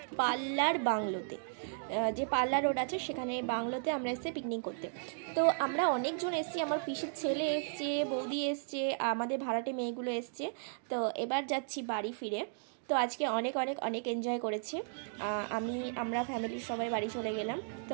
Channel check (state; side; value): silent; left; digital silence